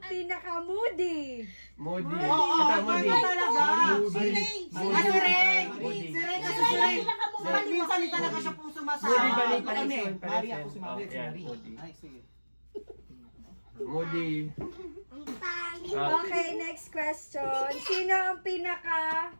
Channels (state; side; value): inverted; both; correlation -1.00